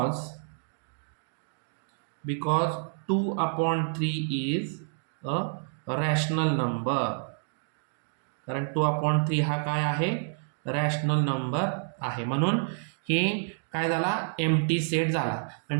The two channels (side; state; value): left; silent; 59 dB below the other